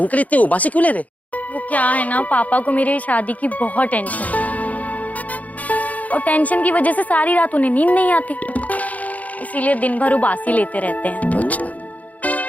इतने उबासी क्यों ले रहे? वो क्या है ना, पापा को मेरी शादी की बहुत टेंशन है और टेंशन की वजह से सारी रात उन्हें नींद नहीं आती, इसीलिए दिन भर उबासी लेते रहते हैं। अच्छा।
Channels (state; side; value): late; right; 0.073 ms